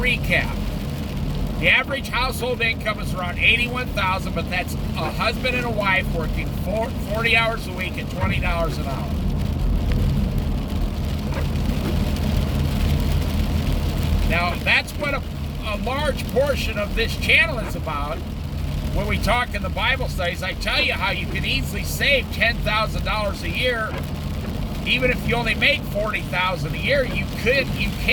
The average household income is around $81,000, but that's a husband and a wife working 40 hours a week at $20 an hour. Now, that's what a large portion of this channel is about. When we talk in the Bible studies, I tell you how you can easily save $10,000 a year. Even if you only make $40,000 a year, you can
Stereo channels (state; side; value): identical; both; correlation 1.00